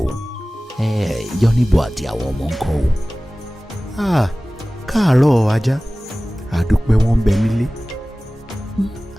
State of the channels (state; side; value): normal; both; correlation 0.98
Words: o yọnibo àti àwọn ọmọ ń kọ́ o. káàárọ̀ ajá àdúpẹ́ wọn ń bẹ nílé.